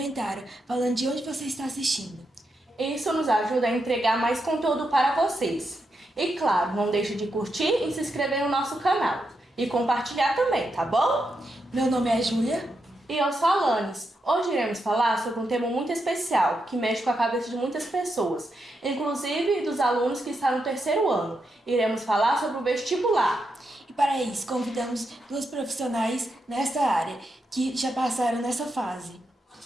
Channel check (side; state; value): both; normal; correlation 0.84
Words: falando de onde você está assistindo. Isso nos ajuda a entregar mais conteúdo para vocês. E claro, não deixe de curtir e se inscrever no nosso canal. E compartilhar também, tá bom? Meu nome é Júlia. E eu sou a Alanis. Hoje iremos falar sobre um tema muito especial, que mexe com a cabeça de muitas pessoas, inclusive dos alunos que estão no terceiro ano. Iremos falar sobre o vestibular. E para isso, convidamos duas profissionais nesta área que já passaram nessa fase.